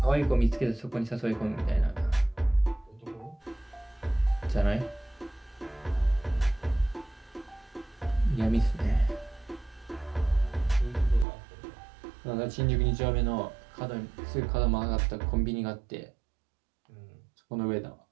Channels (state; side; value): drops out; left; at 11.2 s